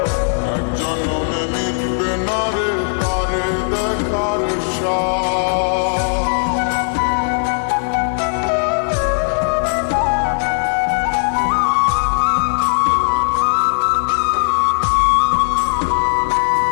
এক জন্মে মিটবে না রে তারে দেখার স্বাদ।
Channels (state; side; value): silent; right; digital silence